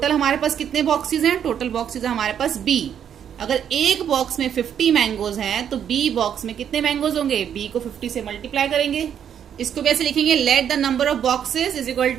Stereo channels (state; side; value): quieter; left; 8.9 dB